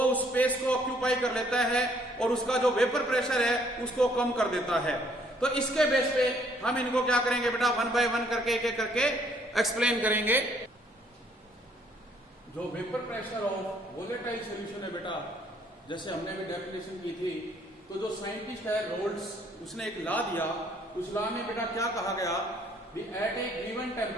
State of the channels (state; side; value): normal; both; correlation 0.64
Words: उस स्पेस को ऑक्यूपाई कर लेता है और उसका जो वेपर प्रेशर है उसको कम कर देता है। तो इसके बेस पे हम इनको क्या करेंगे बेटा? 1 बाय 1 करके एक एक करके एक्सप्लेन करेंगे। जो vapour pressure of volatile solution है बेटा, जैसे हमने भी डेफिनेशन की थी, तो जो साइंटिस्ट है रोल्ट्स उसने एक लॉ दिया। उस लॉ में बेटा क्या कहा गया? एट ए गिवन